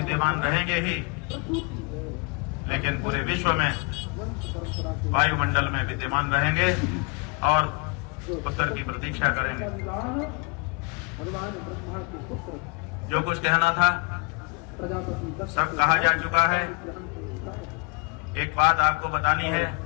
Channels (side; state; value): right; quieter; 31.8 dB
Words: रहेंगे ही, लेकिन पूरे विश्व में वायुमंडल में विद्यमान रहेंगे और उत्तर की प्रतीक्षा करेंगे। जो कुछ कहना था सब कहा जा चुका है। एक बात आपको बतानी है